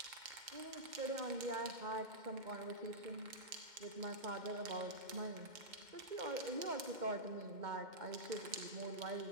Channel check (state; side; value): late; left; 2.1 ms